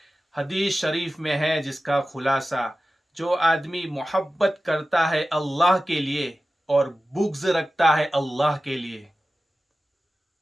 حدیث شریف میں ہے جس کا خلاصہ، جو آدمی محبت کرتا ہے اللہ کے لیے اور بغض رکھتا ہے اللہ کے لیے،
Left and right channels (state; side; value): normal; both; correlation 0.95